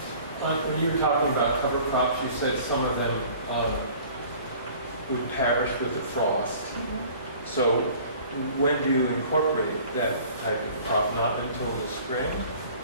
When you were talking about cover crops, you said some of them would perish with the frost. Mm-hmm. So when do you incorporate that type of crop? Not until the spring,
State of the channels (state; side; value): inverted; both; correlation -0.49